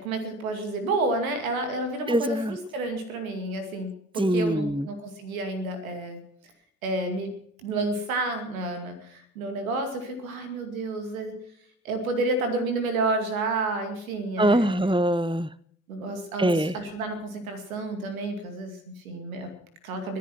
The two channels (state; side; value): normal; both; correlation 0.43